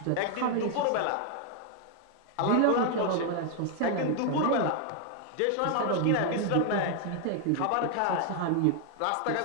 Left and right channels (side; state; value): both; different; correlation 0.00